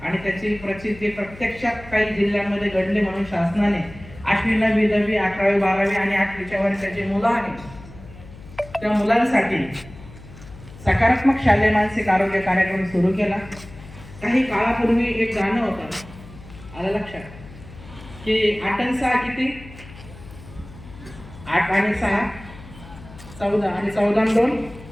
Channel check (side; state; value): left; noise; hum, 18 dB below the sound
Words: आणि त्याची प्रचिती प्रत्यक्षात काही जिल्ह्यांमध्ये घडले म्हणून शासनाने 8वी 9वी 10वी 11वी 12वी आणि 8वीच्या वर्षाचे मुलं आहेत त्या मुलांसाठी सकारात्मक शालेय मानसिक आरोग्य कार्यक्रम सुरू केला. काही काळापूर्वी एक गाणं होतं आलं लक्षात की 8 आणि 6 किती 8 आणि 6 14 आणि 14 आणि 2